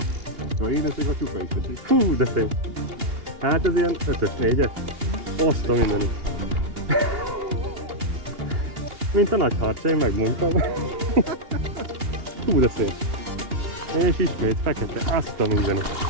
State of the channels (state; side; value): late; left; 2.8 ms